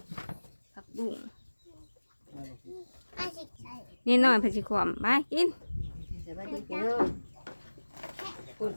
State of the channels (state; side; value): inverted; both; correlation -1.00